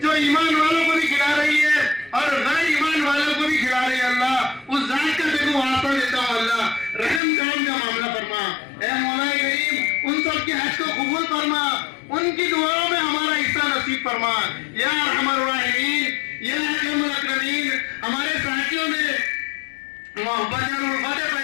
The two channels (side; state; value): right; drops out; at 7.2 s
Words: जो ईमान वालों को भी खिला रही है और गैर ईमान वालों को भी खिला रही है। अल्लाह उस जात का देखो वास्ता देता हूँ, अल्लाह रहम करम का मामला फरमा। ए मौलाए करीम उन सब के हज को कबूल फरमा, उनकी दुआओं में हमारा हिस्सा नसीब फरमा। या अरहमर राहिमीन या अकरमुल अकरमीन हमारे साथियों में मोहब्बत और उल्फत